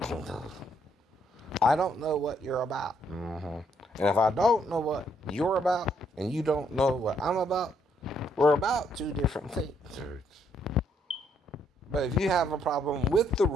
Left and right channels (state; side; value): normal; both; correlation 0.72